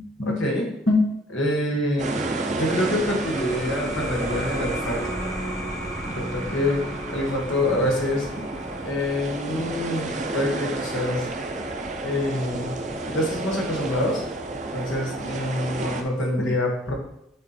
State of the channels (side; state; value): both; normal; correlation 0.52